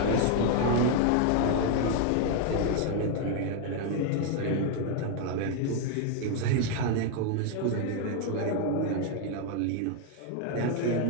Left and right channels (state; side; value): different; both; correlation 0.01